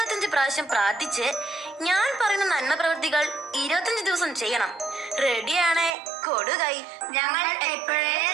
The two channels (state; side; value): drops out; left; at 6.0 s